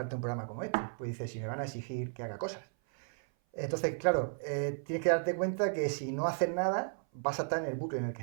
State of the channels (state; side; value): silent; left; 55 dB below the other